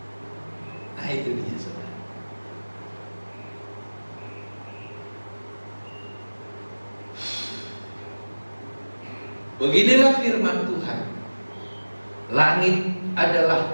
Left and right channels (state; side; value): inverted; both; correlation -1.00